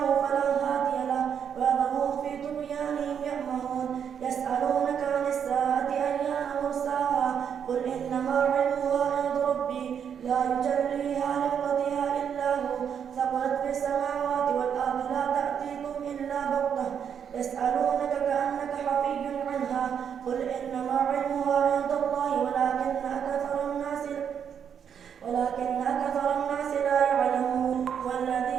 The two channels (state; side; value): quieter; left; 7.9 dB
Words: فلا هادي له ويذرهم في طغيانهم يعمهون يسألونك عن الساعة أيان مرساها قل إنما علمها عند ربي لا يجليها لوقتها إلا هو ثقلت في السماوات والأرض لا تأتيكم إلا بغتة يسألونك كأنك حفي عنها قل إنما علمها عند الله ولكن أكثر الناس لا يعلمون